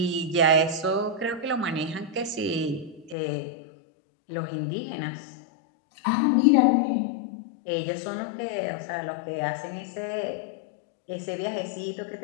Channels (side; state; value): right; drops out; at 3.2 s